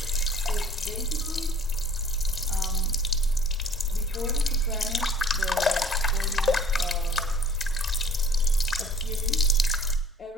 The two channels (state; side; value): normal; both; correlation 0.51